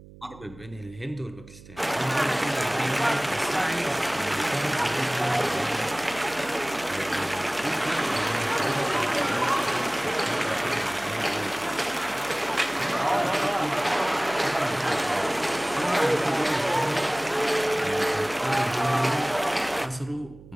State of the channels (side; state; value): right; noise; hum, 20 dB below the sound